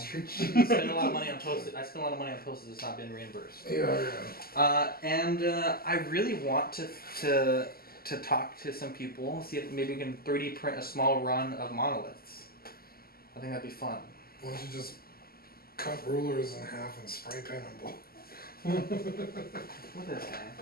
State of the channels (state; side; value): late; right; 0.44 ms